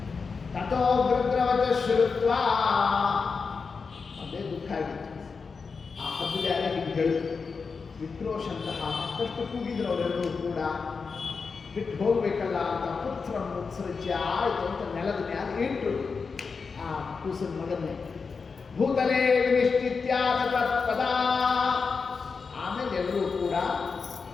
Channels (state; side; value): quieter; right; 5.0 dB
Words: ತಥೋ ಗೃಧ್ರವಚ ಶ್ರುತ್ವ. ಅದೇ ದುಃಖ ಆಗಿತ್ತು. ಆ ಹದ್ದು ಯಾರೇ ಹೀಗೆ ಹೇಳಿತು. ವಿಕ್ರೋಶಂತಹ ಮತ್ತಷ್ಟು ಕೂಗಿದ್ರು ಅವರೆಲ್ಲರೂ ಕೂಡ. ಬಿಟ್ಟು ಹೋಗ್ಬೇಕಲ್ಲ ಅಂತ ಪುತ್ರ ಮುತ್ಸೃಜ್ಯ ಆಯಿತು ಅಂತ ನೆಲದ ಮ್ಯಾಲ ಇಟ್ಟು ಆ ಕೂಸಿನ ಮಗನ್ನೇ ಭೂತಲೇ ವಿನಿಶ್ಚಿತ್ಯಾದ ಪದ. ಆಮೇಲೆ ಎಲ್ಲರೂ ಕೂಡ